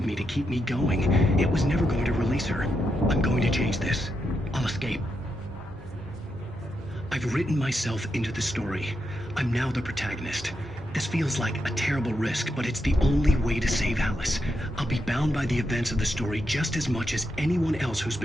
me to keep me going. It was never going to release her. I'm going to change this. I'll escape. I've written myself into the story. I'm now the protagonist. This feels like a terrible risk, but it's the only way to save Alice. I'll be bound by the events of the story just as much as anyone else who's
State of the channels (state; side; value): normal; both; correlation 0.84